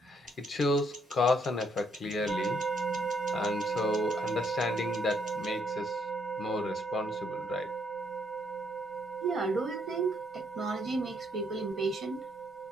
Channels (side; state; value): both; normal; correlation 0.71